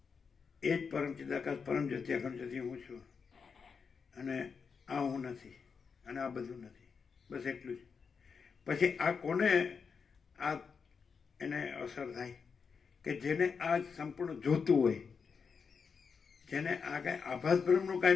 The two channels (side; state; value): right; quieter; 5.8 dB